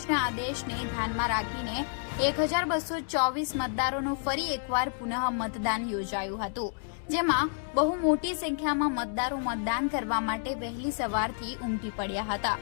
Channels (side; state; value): right; silent; digital silence